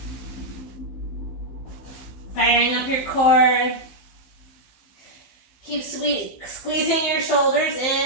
Firing up your core. Keep squeezing your shoulders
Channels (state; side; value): late; right; 15 ms